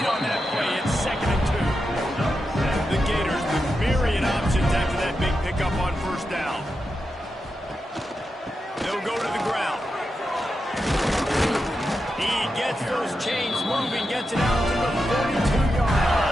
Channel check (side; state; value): both; normal; correlation 0.88